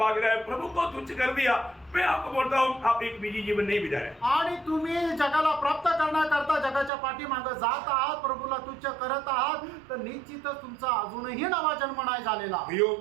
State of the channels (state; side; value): drops out; left; at 6.9 s